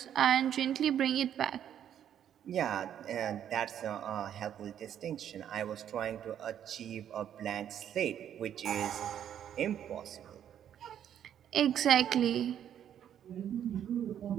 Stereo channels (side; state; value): left; quieter; 9.9 dB